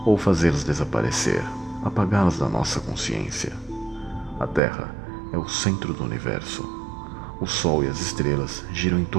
ou fazê-los desaparecer, apagá-los da nossa consciência. A Terra é o centro do universo. O Sol e as estrelas giram em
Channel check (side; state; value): left; drops out; at 4.6 s